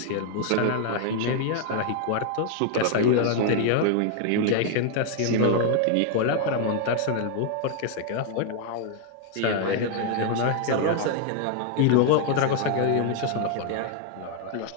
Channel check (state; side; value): different; both; correlation 0.00